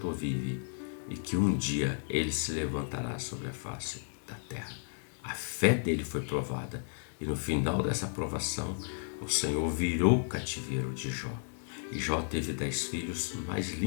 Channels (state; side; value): silent; right; digital silence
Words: vive e que um dia ele se levantará sobre a face da terra. A fé dele foi provada e no final dessa provação o Senhor virou o cativeiro de Jó. E Jó teve 10 filhos mais